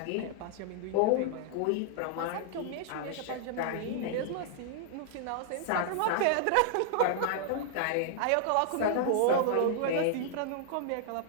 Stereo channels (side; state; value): both; different; correlation -0.01